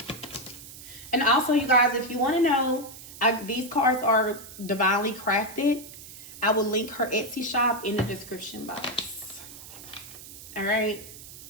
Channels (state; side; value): noise; right; hiss, 15 dB below the sound